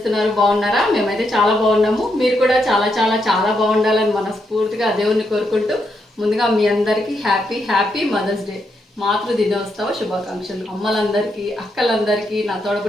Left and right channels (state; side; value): normal; both; correlation 0.80